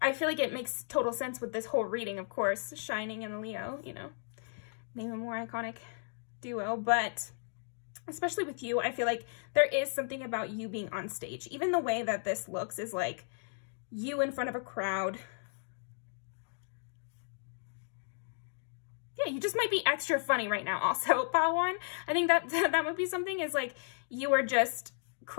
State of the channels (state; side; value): silent; right; digital silence